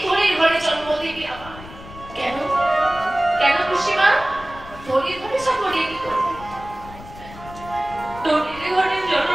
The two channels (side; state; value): left; noise; rumble, 16 dB below the sound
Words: ধরে ঘরে জন্ম দিবি আমার কেন কেন খুশিমা ধরে ধরে সকলে কি করবে ধরে ঘরে জন্ম